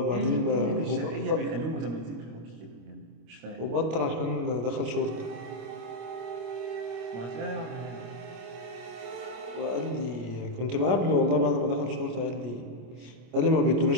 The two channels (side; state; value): left; late; 25 ms